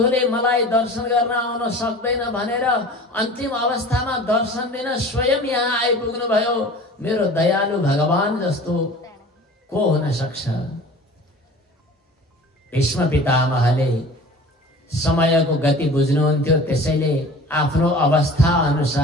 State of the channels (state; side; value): normal; both; correlation 0.42